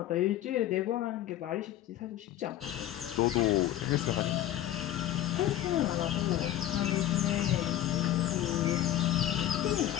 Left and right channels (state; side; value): quieter; right; 12.8 dB